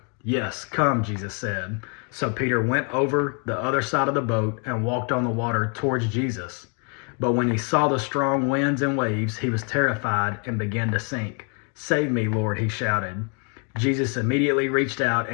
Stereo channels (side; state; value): right; quieter; 37.8 dB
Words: "Yes, come," Jesus said. So Peter went over the other side of the boat and walked on the water towards Jesus. But when he saw the strong winds and waves, he was terrified and began to sink. "Save me, Lord," he shouted. Jesus immediately reached out